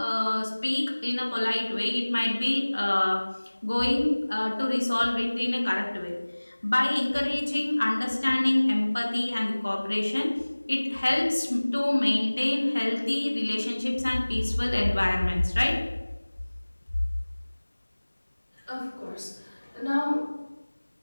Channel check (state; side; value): inverted; both; correlation -1.00